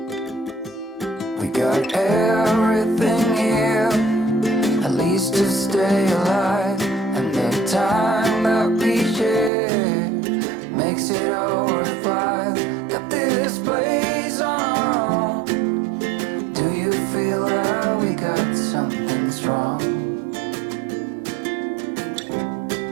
We got everything here, at least to stay alive. And the time that we share makes it all worthwhile. Got this place on our own. Do you feel that we got something strong?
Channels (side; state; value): left; drops out; at 9.5 s